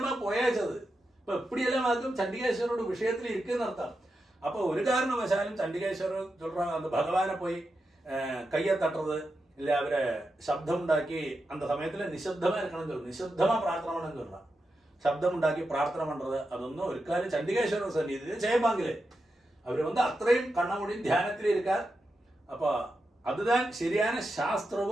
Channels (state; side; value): normal; both; correlation 0.88